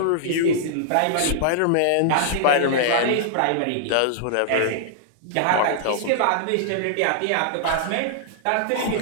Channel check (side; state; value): both; different; correlation -0.01